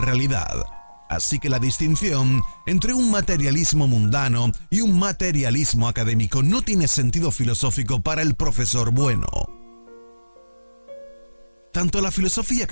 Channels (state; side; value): inverted; both; correlation -1.00